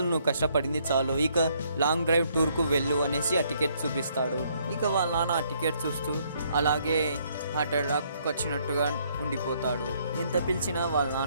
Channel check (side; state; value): both; inverted; correlation -0.68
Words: నువ్వు కష్టపడింది చాలు, ఇక లాంగ్ డ్రైవ్ టూర్కు వెళ్ళు అనేసి ఆ టికెట్ చూపిస్తాడు. ఇక వాళ్ళ నాన్న ఆ టికెట్ చూస్తూ అలాగే హార్ట్ అటాక్ వచ్చినట్టుగా ఉండిపోతాడు. ఎంత పిలిచినా వాళ్ళ